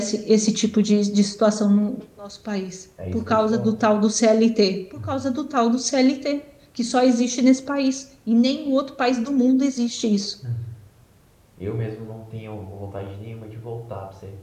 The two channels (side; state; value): both; identical; correlation 1.00